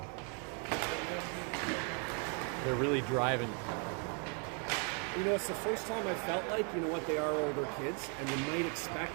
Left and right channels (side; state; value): left; quieter; 38.0 dB